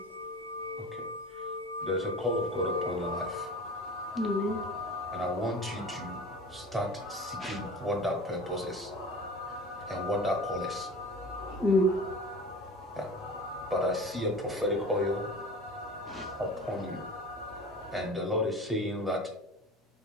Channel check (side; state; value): both; normal; correlation 0.36